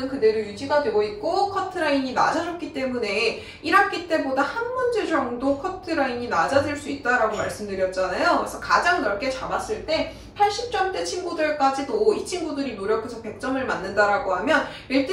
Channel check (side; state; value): both; identical; correlation 1.00